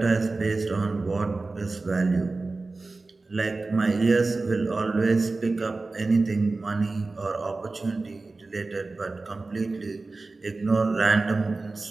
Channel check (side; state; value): left; quieter; 3.5 dB